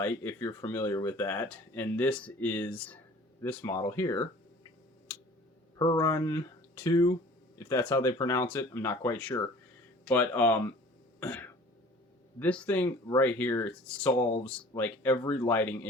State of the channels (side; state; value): both; normal; correlation 0.47